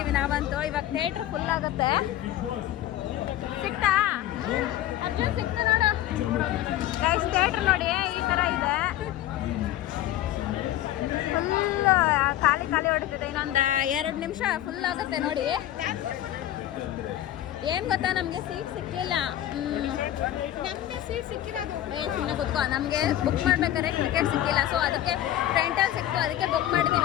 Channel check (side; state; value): right; quieter; 13.2 dB